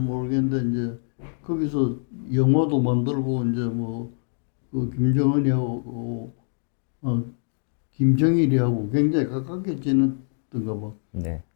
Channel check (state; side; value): silent; right; 62 dB below the other